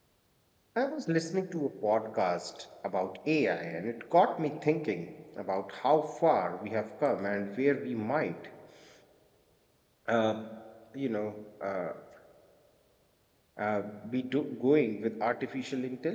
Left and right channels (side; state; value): both; identical; correlation 1.00